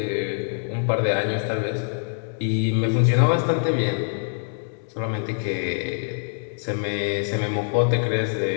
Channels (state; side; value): silent; right; digital silence